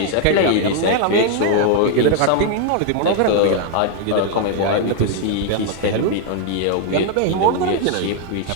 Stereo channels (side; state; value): both; different; correlation 0.00